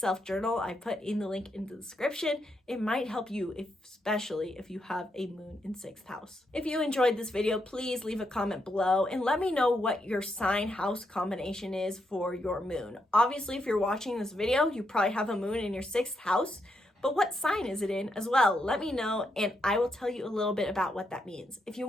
journal. I put in the link in the description. It might help you, especially if you have a moon in 6th house. If you enjoyed this video, please leave a comment below and let me know what your sign house combination is for your moon. Obviously, if you're watching this video, you probably have a moon in your 6th house, but what sign is it in as well? Let me know and I will tell you a little bit about what that means. If you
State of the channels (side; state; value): both; normal; correlation 0.80